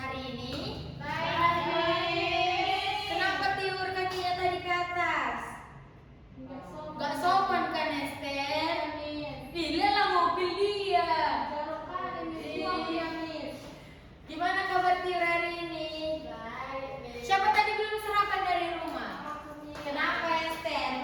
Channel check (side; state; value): both; identical; correlation 1.00